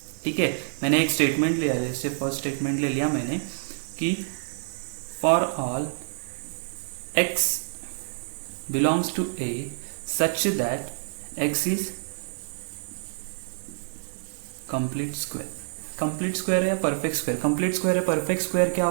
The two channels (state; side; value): silent; left; digital silence